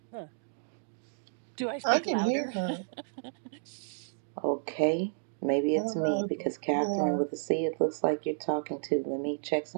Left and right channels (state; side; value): silent; left; digital silence